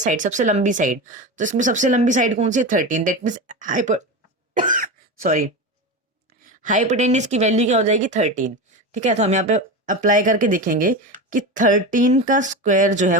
साइड, सबसे लंबी साइड। तो इसमें सबसे लंबी साइड कौन सी है 13, दैट मीन्स सॉरी हाइपोटेन्यूस की वैल्यू क्या हो जाएगी 13। ठीक है, तो हम यहाँ पे अप्लाई करके देखेंगे कि 13 का स्क्वायर जो है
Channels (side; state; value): both; normal; correlation 0.22